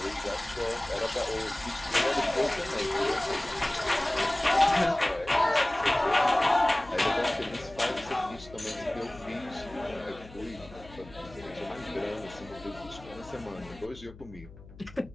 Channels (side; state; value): left; noise; hum, 19 dB below the sound